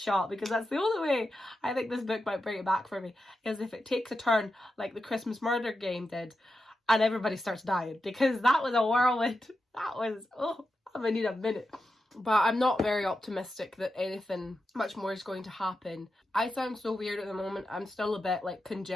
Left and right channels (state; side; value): normal; both; correlation 0.89